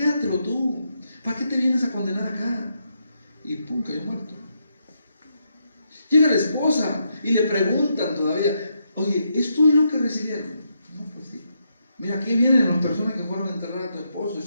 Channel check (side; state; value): both; inverted; correlation -0.80